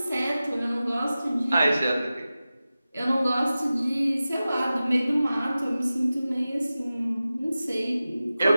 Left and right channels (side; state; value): both; inverted; correlation -0.95